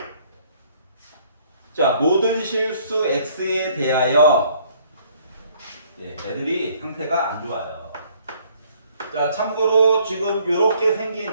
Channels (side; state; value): both; inverted; correlation -0.62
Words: 자, 모든 실수 x에 대하여 애들이 상태가 안 좋아요. 자, 참고로 지금 이렇게